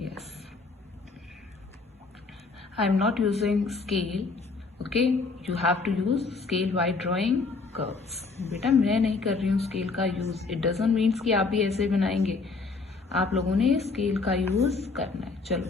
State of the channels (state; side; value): quieter; right; 4.1 dB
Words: Yes, I am not using scale, okay, you have to use scale while drawing curves. बेटा मैं नहीं कर रही हूँ स्केल का यूज, इट डजंट मीन्स कि आप भी ऐसे बनाएंगे, आप लोगों ने स्केल का यूज करना है।